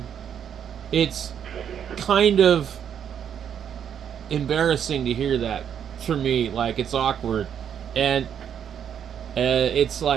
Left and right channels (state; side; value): quieter; left; 8.6 dB